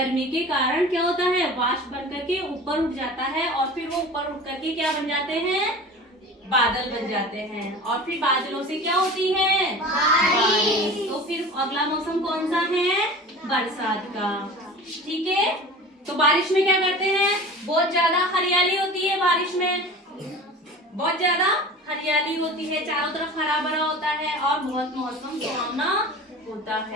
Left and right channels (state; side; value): normal; both; correlation 0.37